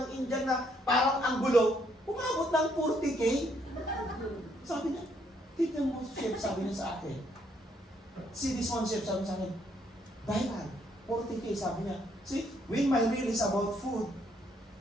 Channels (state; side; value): normal; both; correlation 0.71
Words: Indian na parang anggulo, umabot ng 40K. Sabi niya, tignan mo, chef, sabi niya sa akin. See this one, chef, sabi niya sa akin, viral, 40K, sabi niya. See, when my reel is about food,